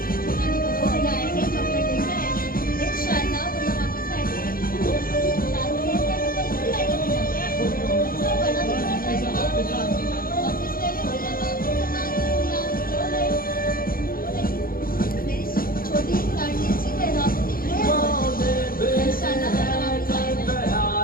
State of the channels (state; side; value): late; right; 0.42 ms